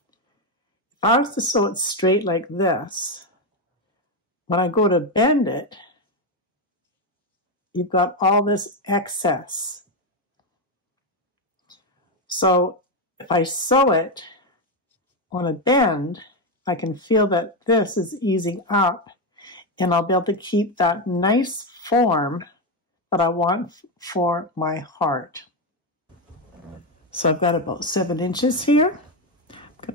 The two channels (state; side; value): normal; both; correlation 0.08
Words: If I was to sew it straight like this, when I go to bend it, you've got all this excess. So if I sew it on a bend, I can feel that this is easing up, and I'll be able to keep that nice form that I want for my heart. So I've got about 7 inches here. I'm